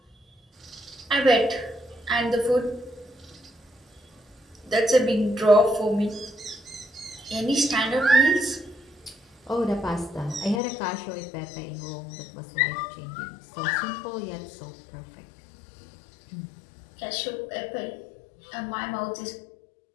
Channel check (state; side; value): drops out; right; at 10.6 s